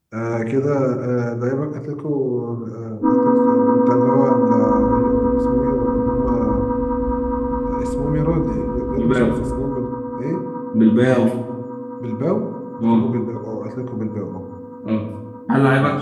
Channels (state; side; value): identical; both; correlation 1.00